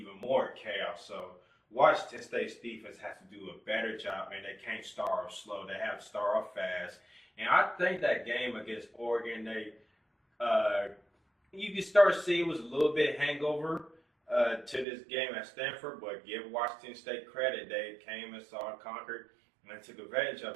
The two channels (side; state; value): left; drops out; at 14.9 s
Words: more chaos. So Washington State's defense has to do a better job, and they can't start off slow. They have to start off fast. And I think that game against Oregon, you can start to see it was a little bit hangover to this game at Stanford, but give Washington State credit. They came and saw and conquered and took advantage of